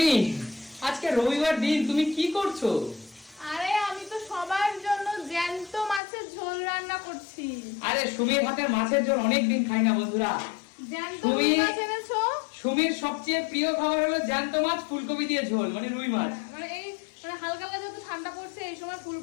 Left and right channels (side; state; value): right; drops out; at 6.0 s